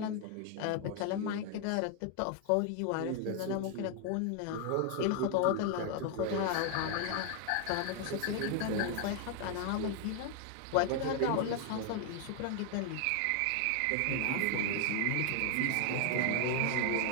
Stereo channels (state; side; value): different; both; correlation 0.01